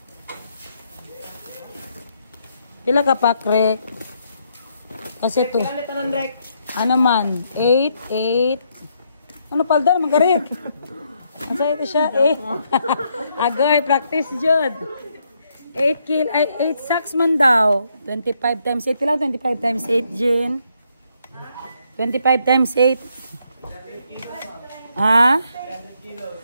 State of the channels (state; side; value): inverted; both; correlation -0.74